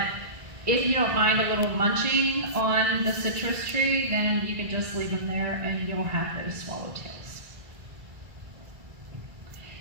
if you don't mind a little munching on the citrus tree, then you can just leave them there and you'll have those swallowtails.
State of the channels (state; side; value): late; left; 1.8 ms